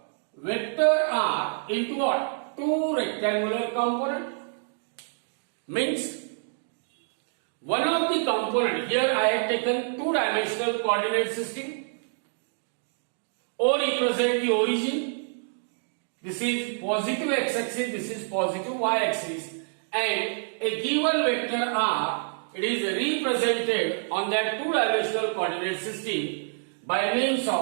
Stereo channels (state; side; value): silent; left; digital silence